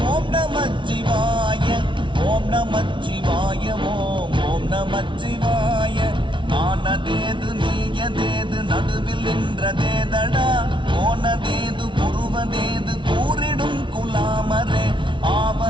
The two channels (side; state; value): left; late; 0.24 ms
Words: ஓம் நமச்சிவாய ஓம் நமச்சிவாய ஓம் ஓம் நமச்சிவாய ஆனதேது நீயதேது நடுவில் நின்றதேதடா போனதேது புருவதேது கூறிடும் குலாமரே